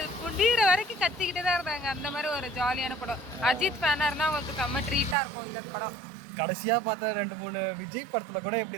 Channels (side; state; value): left; drops out; at 5.2 s